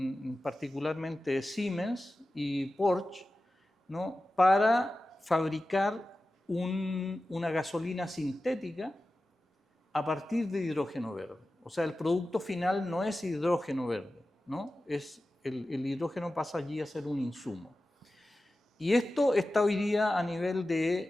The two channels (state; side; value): normal; both; correlation 0.94